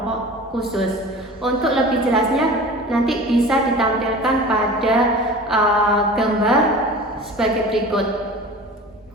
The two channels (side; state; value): both; normal; correlation 0.38